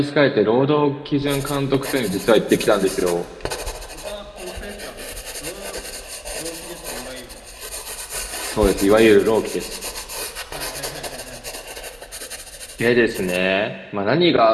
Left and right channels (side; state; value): both; identical; correlation 1.00